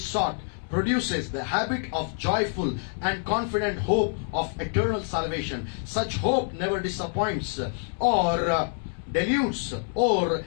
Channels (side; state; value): right; silent; 60 dB below the other